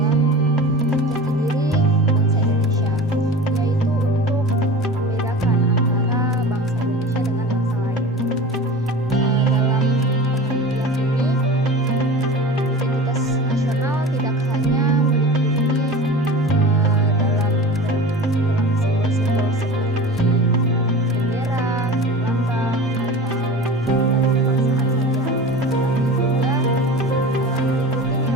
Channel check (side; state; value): both; normal; correlation 0.35